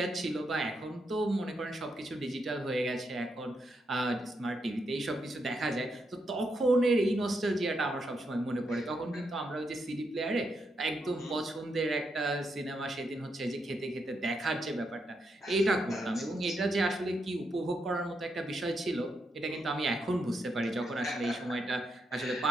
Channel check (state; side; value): normal; both; correlation 0.81